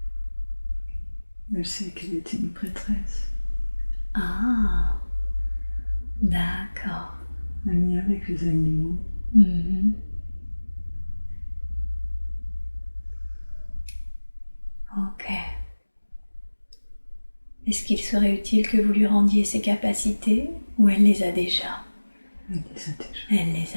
Elle sait qu'elle était une prêtresse. Ah, d'accord. Un lien avec les animaux. Mhm. Ok. Est-ce qu'il serait utile que vous lui rendiez ses capacités ou elle les a déjà? Elle les a déjà. Elle les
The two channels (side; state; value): both; inverted; correlation -1.00